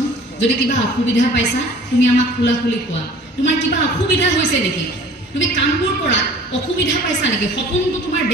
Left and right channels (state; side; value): normal; both; correlation 0.47